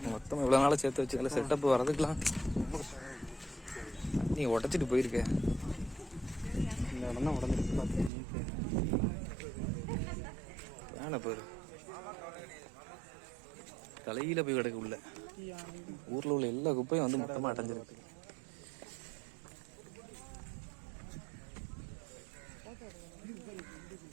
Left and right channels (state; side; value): drops out; left; at 8.1 s